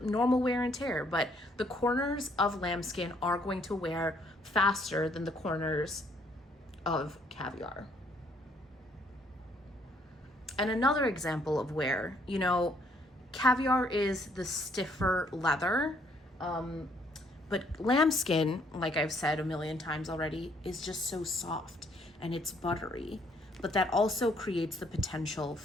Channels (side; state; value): both; normal; correlation 0.67